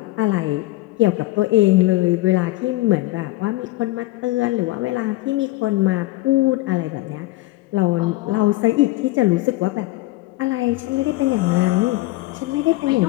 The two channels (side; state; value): right; quieter; 19.1 dB